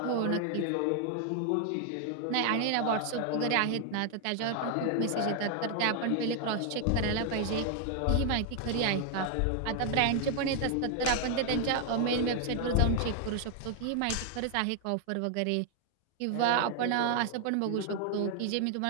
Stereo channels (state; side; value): different; both; correlation 0.00